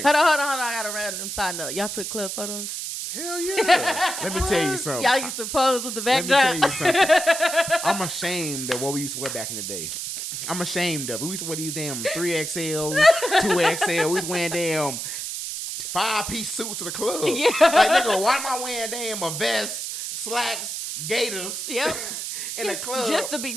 Hold on. I got a random side note. Y'all took club photos? Hell yeah. Let me tell you something. Y'all used to pose with the Let me backdrop. tell you something. I'm ashamed of what we used to wear back in the day. I'm ashamed of it. We used to wear these damn 3XL, 2XL. We was wearing damn 5-piece suits to the club. Yeah. Like, nigga, why am I wearing damn a vest, slacks, gaiters Yep. in the club? Just to be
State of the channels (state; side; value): noise; right; hiss, 5 dB below the sound